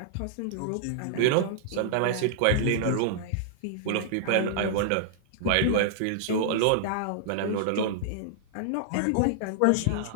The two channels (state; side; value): different; both; correlation -0.01